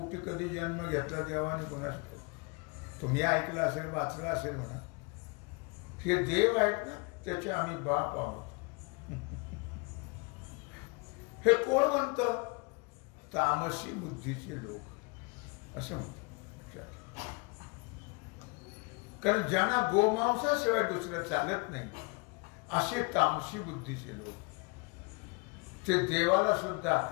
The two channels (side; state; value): right; quieter; 30.2 dB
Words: कधी जन्म घेतला देवाने कोणास ठाऊक. तुम्ही ऐकलं असेल, वाचलं असेल म्हणा. हे देव आहेत ना त्याचे आम्ही बाप आहोत. हे कोण म्हणतं? तामसी बुद्धीचे लोक असं म्हणतात. कारण ज्यांना गोमांसाशिवाय दुसरं चालत नाही असे तामसी बुद्धीचे लोक, ते देवाला सुद्धा